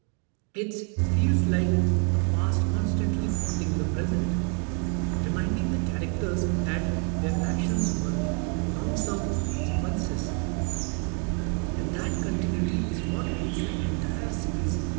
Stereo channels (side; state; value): left; quieter; 39.4 dB